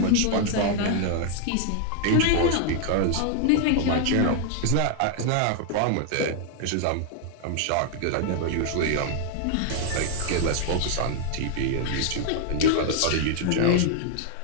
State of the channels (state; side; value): different; both; correlation 0.00